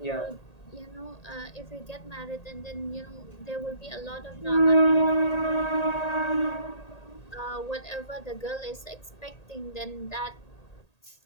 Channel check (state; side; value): late; right; 1.8 ms